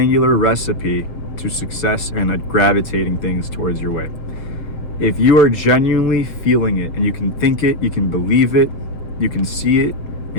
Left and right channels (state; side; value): late; right; 7.4 ms